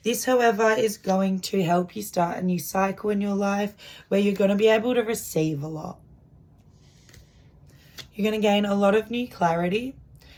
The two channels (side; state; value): both; identical; correlation 1.00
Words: This, however, is going to help you start a new cycle in your life where you're going to be able to receive a lot. You're going to gain a lot of new clarity